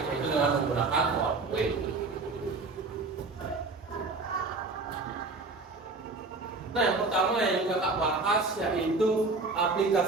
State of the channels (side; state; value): left; quieter; 3.7 dB